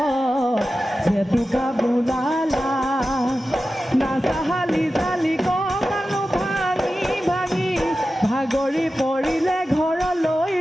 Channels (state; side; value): normal; both; correlation 0.94